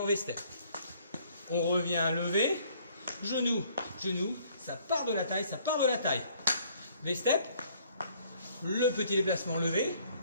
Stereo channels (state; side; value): inverted; both; correlation -0.60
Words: V-step. On revient levé, genou, ça part de la taille, V-step, le petit déplacement levé,